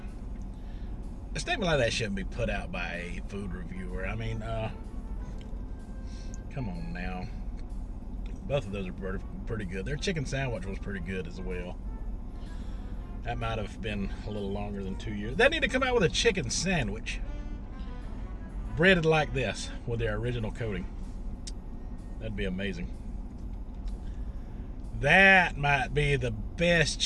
A statement like that shouldn't be put out by a food reviewer. I mean, come on now. Both of those are pretty good. Their chicken sandwich was pretty good as well. That might have been a little longer than 2 years. They need to come out with a chicken sandwich breaded like this with their original coating. That'd be amazing. That might be the best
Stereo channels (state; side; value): identical; both; correlation 1.00